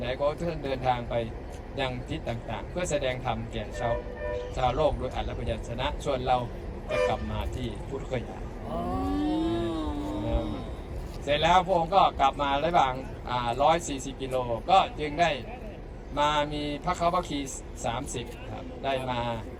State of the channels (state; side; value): identical; both; correlation 1.00